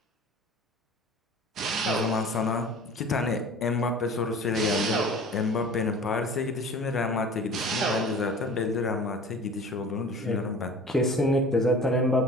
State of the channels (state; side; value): normal; both; correlation 0.43